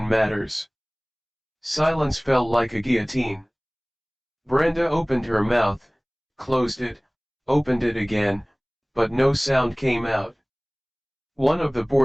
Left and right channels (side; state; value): both; identical; correlation 1.00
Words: matters? Silence fell like a guillotine. Brenda opened her mouth, closed it, opened it again, but no sound came out. One of the